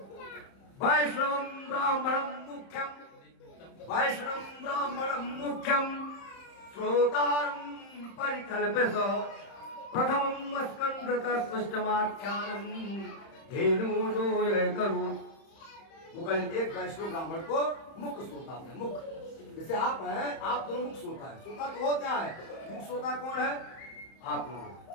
ब्राह्मणम मुख्यम, वैष्णव ब्राह्मणम मुख्यम श्रोतारम परिकल्पित प्रथमम स्कंदतस्पष्टमाख्यानम धेनु जो ये करो। गोकर्ण एक वैष्णव ब्राह्मण को मुख्य श्रोता है। मुख्य जैसे आप हैं, आप दोनों मुख्य श्रोता है। श्रोता तो वो क्या है, मुख्य श्रोता कौन है, आप लोग।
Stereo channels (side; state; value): right; late; 31 ms